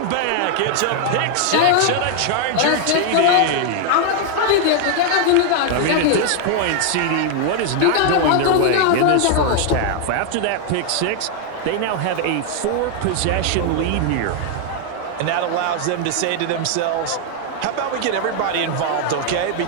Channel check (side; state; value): both; different; correlation 0.00